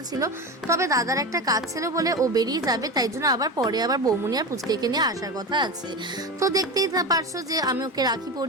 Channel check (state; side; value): normal; both; correlation 0.23